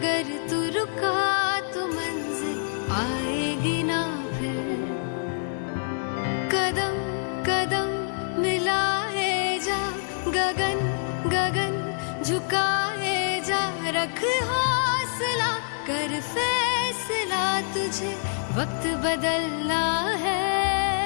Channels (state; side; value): silent; right; digital silence